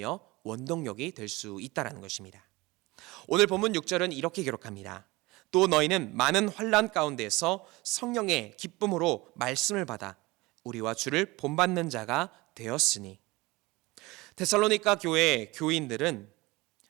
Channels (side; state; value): left; quieter; 22.0 dB